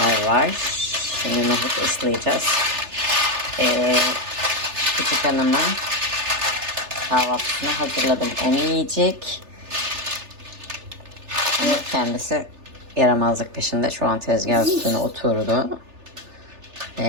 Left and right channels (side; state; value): left; late; 3.3 ms